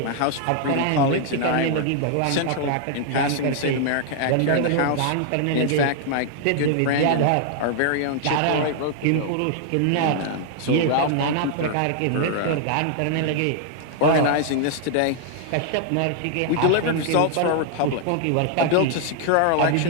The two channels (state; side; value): different; both; correlation 0.00